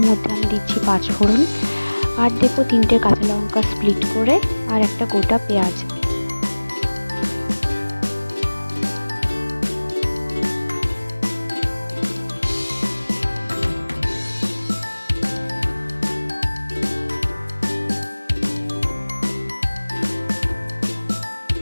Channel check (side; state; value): both; inverted; correlation -1.00